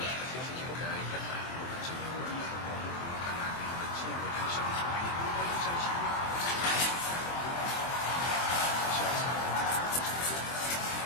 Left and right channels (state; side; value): late; right; 23 ms